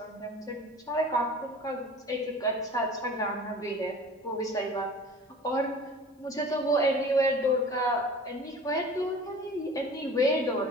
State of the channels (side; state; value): both; normal; correlation 0.42